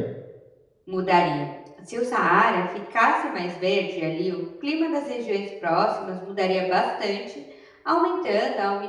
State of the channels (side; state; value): both; identical; correlation 1.00